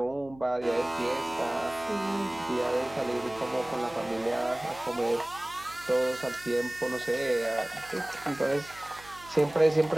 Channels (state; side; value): noise; right; hum, 21 dB below the sound